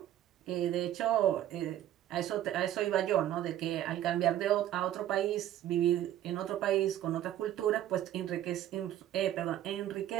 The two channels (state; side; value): quieter; left; 12.2 dB